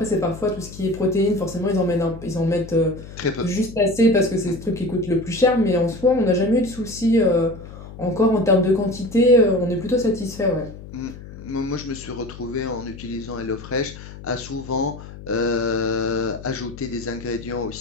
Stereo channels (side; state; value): left; noise; hum, 15 dB below the sound